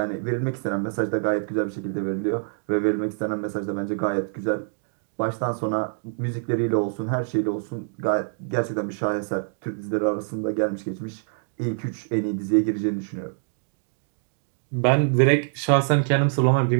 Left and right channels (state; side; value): silent; left; digital silence